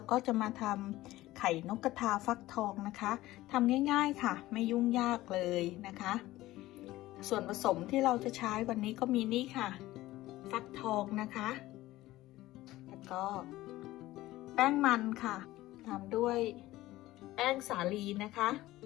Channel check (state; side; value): quieter; right; 16.8 dB